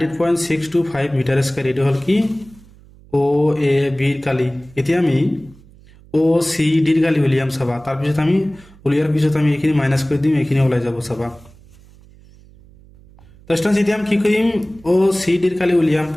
মিটার স্কয়ার এটো হল কি ও এ বি ৰ কালি এতিয়া আমি ও সি ডি ৰ কালি উলিয়াম চাবা তাৰ পিছত আমি উলিয়াৰ পিছত আমি এখিনি মাইনাস কৰি দিম এখিনি ওলাই যাব চাবা তো স্টুডেন্টস এতিয়া আমি কি কৰিম ও সি ডি ৰ কালি উলিয়াম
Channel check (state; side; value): noise; right; hum, 25 dB below the sound